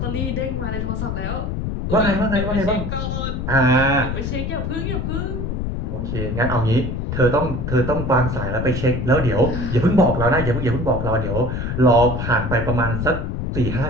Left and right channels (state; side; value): noise; left; rumble, 3 dB below the sound